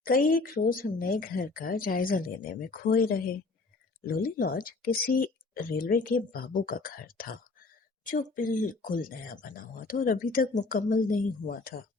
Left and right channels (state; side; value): quieter; right; 3.7 dB